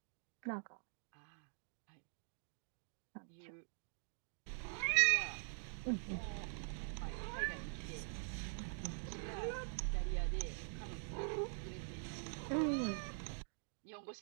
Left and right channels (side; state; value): left; silent; digital silence